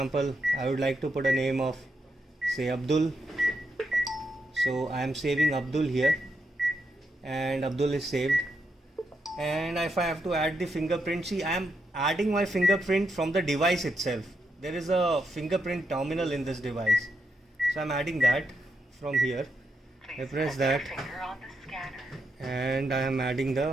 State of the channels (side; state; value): both; normal; correlation 0.82